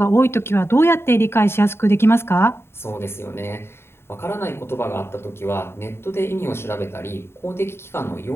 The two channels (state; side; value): late; right; 0.12 ms